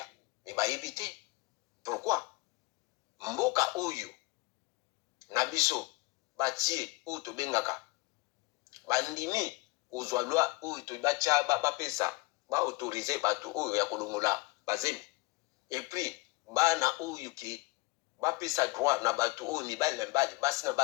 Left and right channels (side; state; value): right; quieter; 24.1 dB